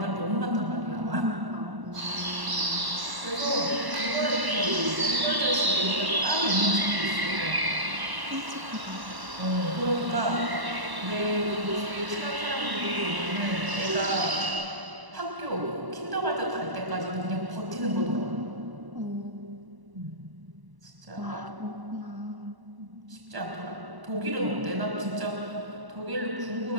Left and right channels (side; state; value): left; late; 1.0 ms